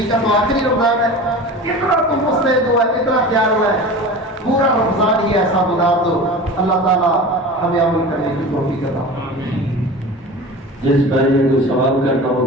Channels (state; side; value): normal; both; correlation 0.34